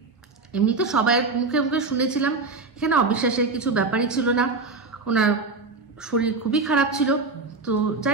এমনি তো সবাই মুখে মুখে শুনেছিলাম, এখানে অবিশ্বাসের কিছু ব্যাপারই ছিল না। ওনার শরীর খুবই খারাপ ছিল। তো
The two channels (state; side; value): quieter; left; 3.9 dB